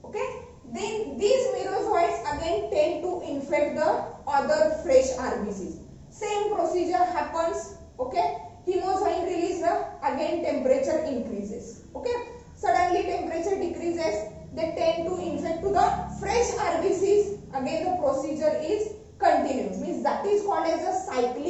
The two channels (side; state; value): both; identical; correlation 1.00